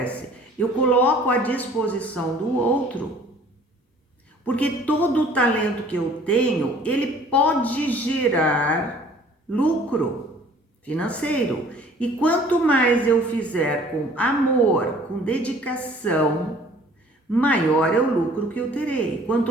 Eu coloco à disposição do outro. Porque todo o talento que eu tenho, ele pode gerar lucro financeiro. E quanto mais eu fizer com amor, com dedicação, maior é o lucro que eu terei. Quanto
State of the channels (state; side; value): normal; both; correlation 0.53